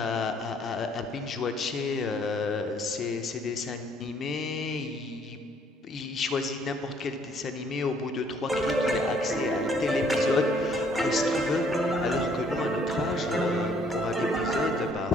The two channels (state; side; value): normal; both; correlation 0.64